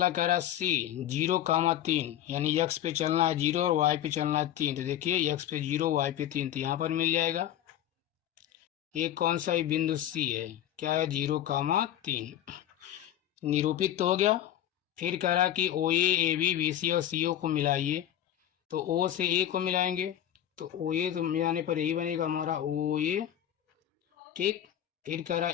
कह रहा है सी 0,3, यानी एक्स पे चलना है 0 और वाई पे चलना है 3। तो देखिए एक्स पे 0 वाई पे 3, तो यहाँ पर मिल जाएगा। ये कौन सा ही बिंदु सी है, क्या है 0,3, निरूपित तो हो गया। फिर कह रहा है कि ओ ए बी बी सी और सी ओ को मिलाइए। तो ओ से ए को मिलाएंगे, तो ओ ए तो मिलाने पर यही बनेगा हमारा ओ ए। ठीक। फिर कह रहा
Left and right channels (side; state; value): right; quieter; 11.5 dB